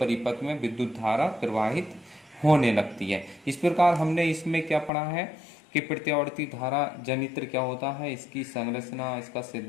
में विद्युत धारा प्रवाहित होने लगती है। इस प्रकार हमने इसमें क्या पढ़ा है कि प्रत्यावर्ती धारा जनित्र क्या होता है, इसकी संरचना, इसका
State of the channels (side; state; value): right; drops out; at 4.9 s